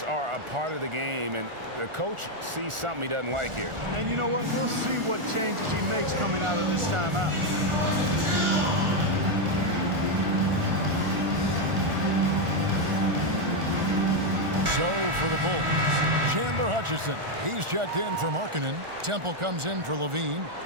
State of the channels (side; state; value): left; late; 1.4 ms